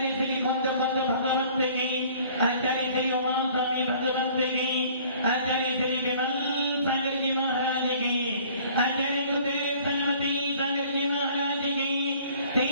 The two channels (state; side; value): inverted; both; correlation -0.53